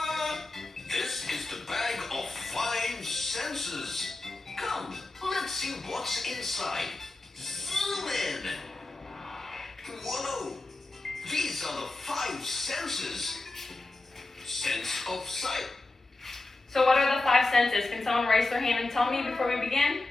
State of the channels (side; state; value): right; quieter; 3.0 dB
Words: This is the bag of 5 senses. Come, let's see what's inside. Zoom in. Whoa! These are the 5 senses. Sense of sight. So what are the 5 senses? Can someone raise their hand and tell me before we begin?